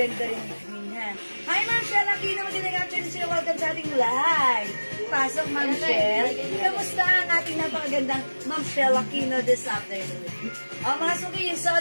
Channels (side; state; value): both; inverted; correlation -1.00